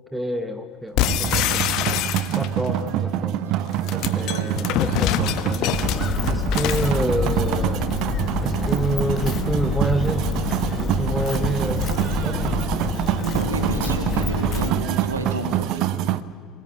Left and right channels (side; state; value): both; normal; correlation 0.41